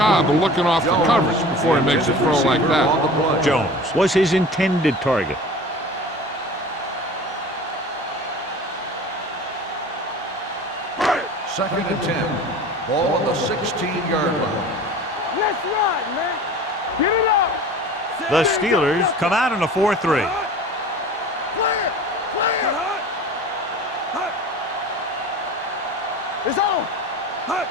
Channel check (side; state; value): both; normal; correlation 0.39